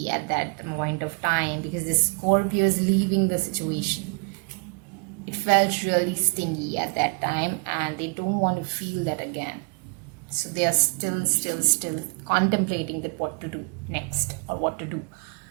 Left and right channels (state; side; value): quieter; left; 34.5 dB